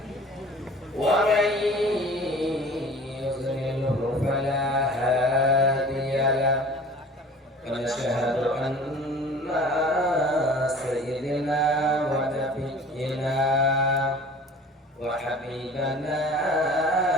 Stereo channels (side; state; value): both; normal; correlation 0.45